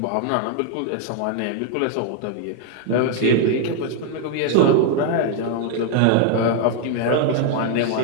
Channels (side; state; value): both; different; correlation 0.00